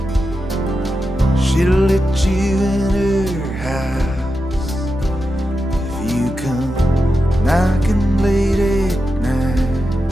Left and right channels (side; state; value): both; normal; correlation 0.89